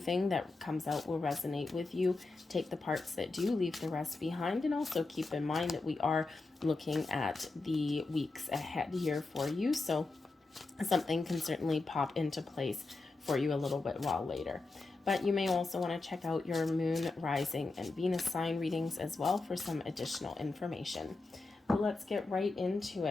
that comes out will resonate with you. Take the parts that do, leave the rest behind, and also keep in mind that we are looking at the weeks ahead here for you, so something can certainly pop into place for you a little bit while later. But you may also want to check out your moon, rising, and Venus sign readings as well for some additional information. But let's get right into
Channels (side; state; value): right; quieter; 3.5 dB